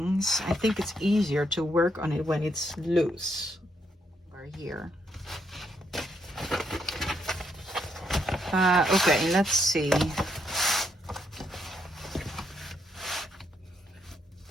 I think it's easier to work on it when it's loose. Right here. Okay, let's see.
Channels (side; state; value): both; normal; correlation 0.76